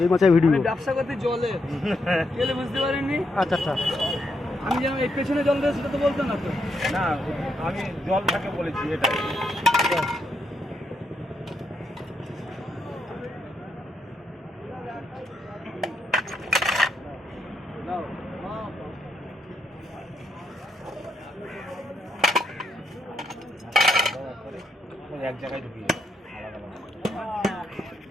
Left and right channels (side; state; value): both; normal; correlation 0.79